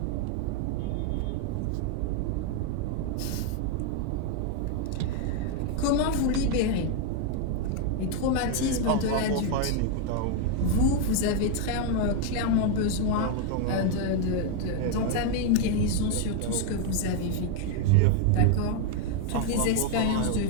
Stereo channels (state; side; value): different; both; correlation 0.01